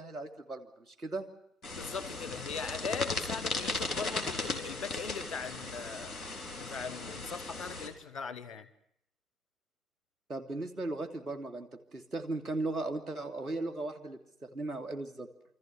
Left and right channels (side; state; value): both; normal; correlation 0.64